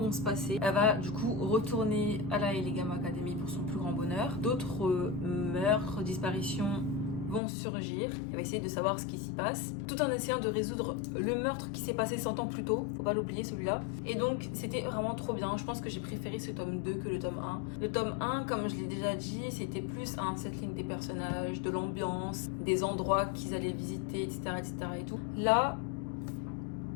se passer. Elle va du coup retourner à la Elegam Academy pour son plus grand bonheur. D'autres meurtres, disparitions vont surgir. Elle va essayer de savoir ce qui s'y passe, tout en essayant de résoudre le meurtre qui s'est passé 100 ans plus tôt. Faut pas l'oublier celui-là. Et donc c'était vraiment trop bien. Je pense que j'ai préféré ce tome 2 que le tome 1. Le tome 1, comme je l'ai déjà dit, c'était plus un settling des personnages, de l'ambiance, des endroits qu'ils allaient visiter, etc. et tout. Là,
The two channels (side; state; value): right; drops out; at 7.4 s